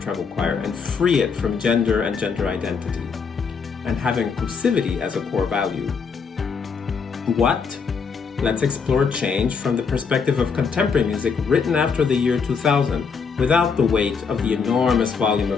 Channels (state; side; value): quieter; right; 5.6 dB